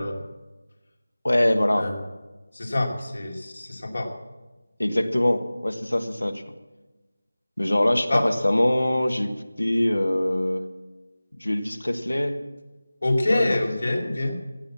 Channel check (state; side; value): inverted; both; correlation -0.98